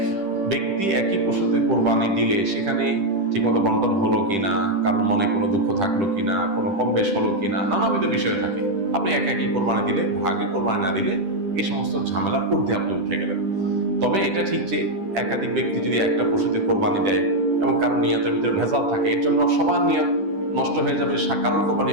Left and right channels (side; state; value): left; late; 10 ms